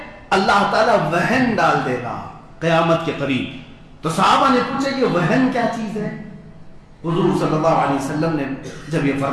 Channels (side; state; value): both; identical; correlation 1.00